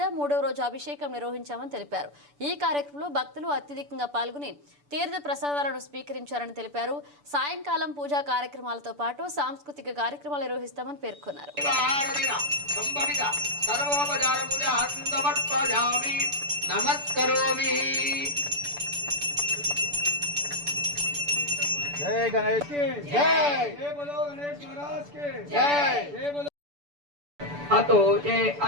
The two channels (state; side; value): late; left; 6.9 ms